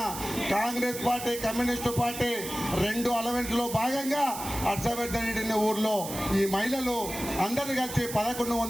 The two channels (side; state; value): right; noise; hiss, 9 dB below the sound